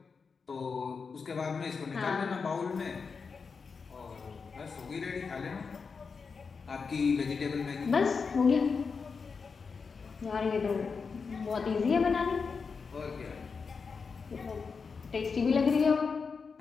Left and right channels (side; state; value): right; quieter; 5.2 dB